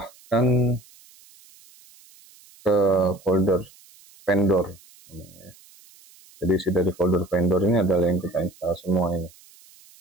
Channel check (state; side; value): noise; right; hiss, 26 dB below the sound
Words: ke folder vendor. Jadi isi dari folder vendor ini adalah yang kita install semua ini.